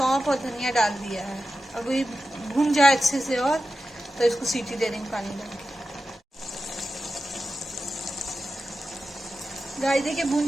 और धनिया डाल दिया है। अब ये भुन जाए अच्छे से और तो इसको सीटी दे देंगे पानी डाल के। गाइस देखिए भुन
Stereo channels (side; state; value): both; normal; correlation 0.92